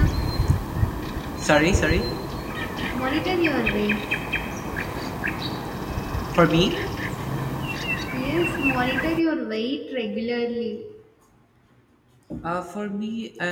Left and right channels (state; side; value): identical; both; correlation 1.00